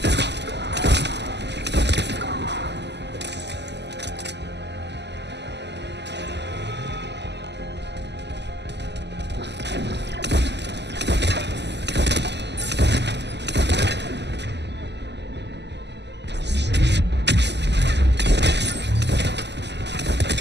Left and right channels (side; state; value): left; late; 0.50 ms